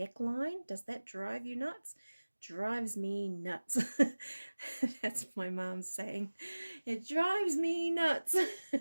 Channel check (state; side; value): inverted; both; correlation -1.00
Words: does that drive you nuts? Drives me nuts. That's my mom's saying. It drives me nuts.